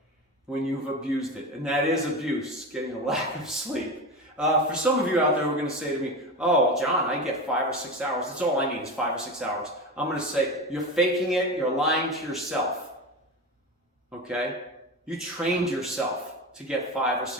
when you've abused it. And that is abuse, getting a lack of sleep. For some of you out there who are going to say to me, oh, John, I get 5 or 6 hours. That's all I need is 5 or 6 hours. I'm going to say, you're faking it. You're lying to yourself. Okay? You trained yourself to get 5 or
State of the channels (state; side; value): normal; both; correlation 0.24